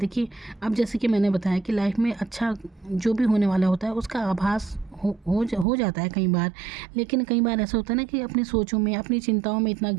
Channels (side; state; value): left; drops out; at 5.7 s